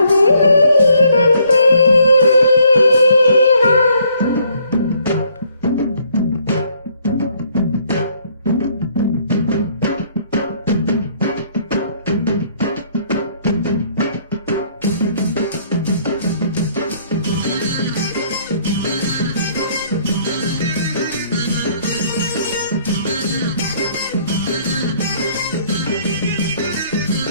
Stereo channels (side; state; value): both; inverted; correlation -0.65